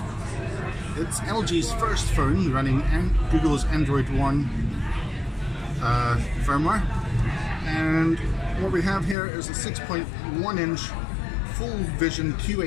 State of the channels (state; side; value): drops out; right; at 9.2 s